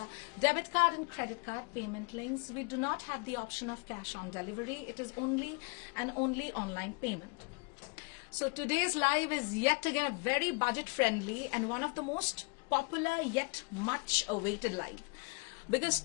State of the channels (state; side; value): quieter; right; 30.8 dB